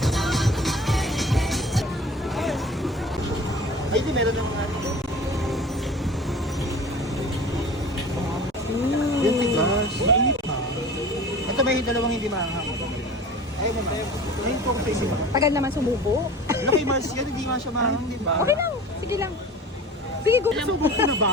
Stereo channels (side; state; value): both; normal; correlation 0.39